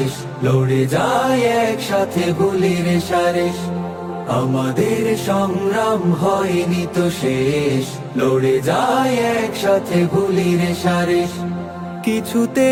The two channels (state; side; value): identical; both; correlation 1.00